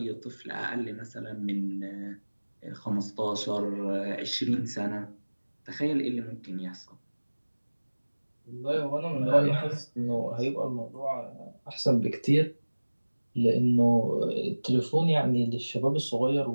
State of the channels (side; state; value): both; inverted; correlation -1.00